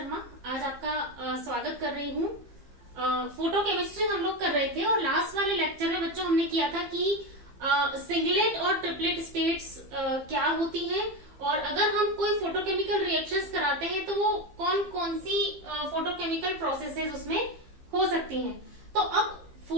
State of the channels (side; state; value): left; late; 15 ms